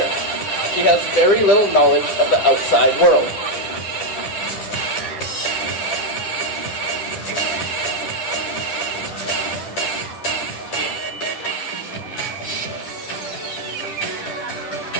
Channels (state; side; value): late; right; 9.9 ms